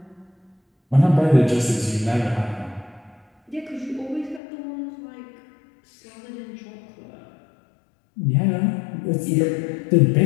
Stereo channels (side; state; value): right; drops out; at 4.4 s